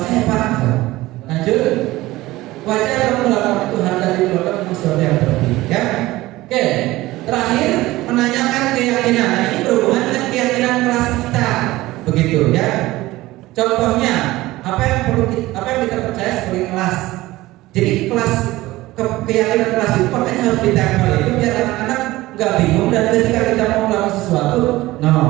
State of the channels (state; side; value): quieter; left; 18.2 dB